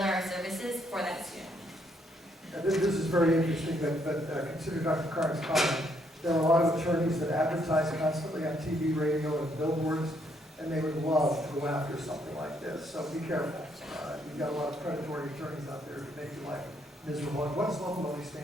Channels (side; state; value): both; normal; correlation 0.72